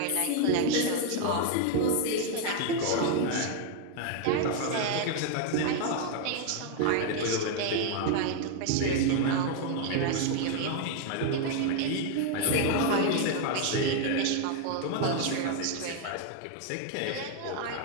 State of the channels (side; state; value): both; different; correlation 0.00